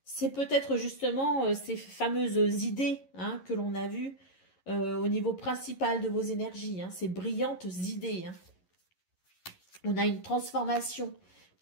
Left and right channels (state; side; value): late; right; 11 ms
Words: C'est peut-être justement ces fameuses idées que l'on a vues au niveau principal de vos énergies, ces brillantes idées. On a une transformation